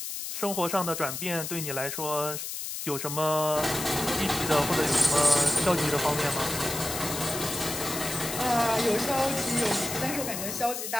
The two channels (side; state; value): left; noise; hiss, 5 dB below the sound